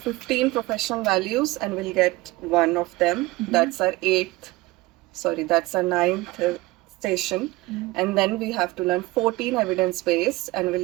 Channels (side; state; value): left; quieter; 20.3 dB